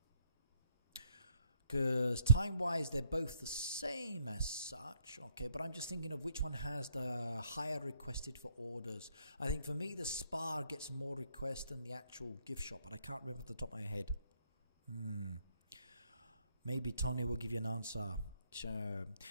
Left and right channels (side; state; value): both; inverted; correlation -0.67